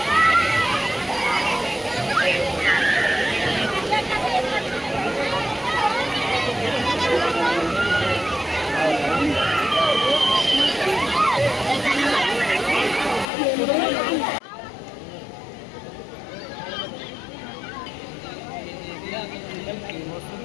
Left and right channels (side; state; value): right; drops out; at 13.2 s